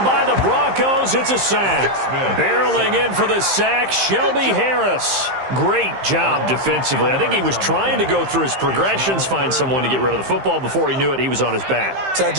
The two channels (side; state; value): left; late; 15 ms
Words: by the Broncos. It's a sack. Barreling in for the sack, Shelby Harris. Great job defensively. I think he was trying to go through his progressions, find someone to get rid of the football. Before he knew it, he was on his back. So that